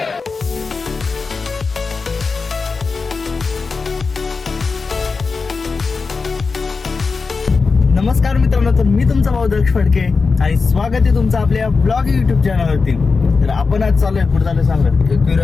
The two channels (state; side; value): quieter; right; 4.5 dB